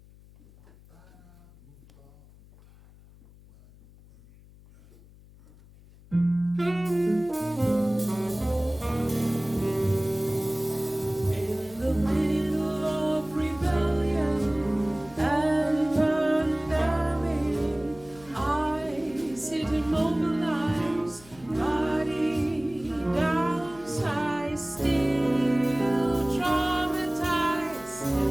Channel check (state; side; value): noise; left; hum, 23 dB below the sound